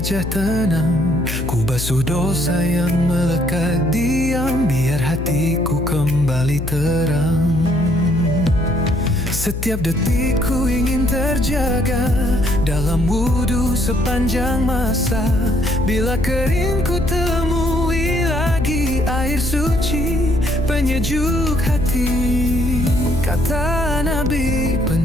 tenang. Ku basuh dosa yang melekat diam, biar hatiku kembali terang. Setiap detik ku ingin terjaga dalam wudhu sepanjang masa. Bila kering ku temui lagi air suci penyejuk hati. Kata Nabi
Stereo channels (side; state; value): left; noise; hum, 5 dB below the sound